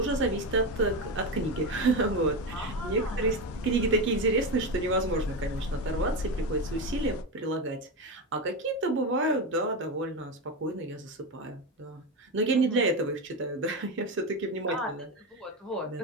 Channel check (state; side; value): normal; both; correlation 0.16